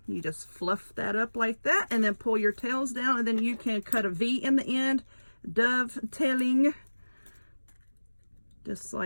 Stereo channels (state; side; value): inverted; both; correlation -1.00